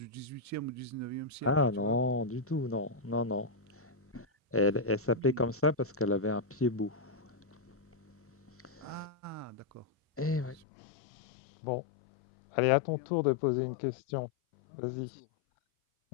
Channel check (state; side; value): drops out; right; at 10.6 s